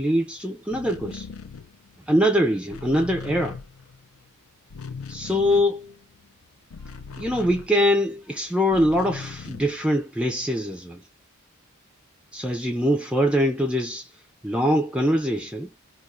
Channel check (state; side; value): normal; both; correlation 0.73